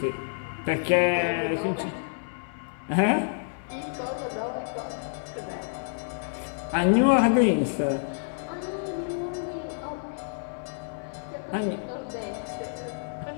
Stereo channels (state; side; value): silent; right; 59 dB below the other